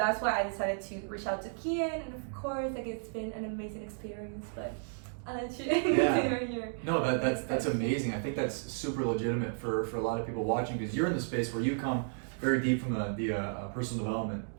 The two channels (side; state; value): left; silent; digital silence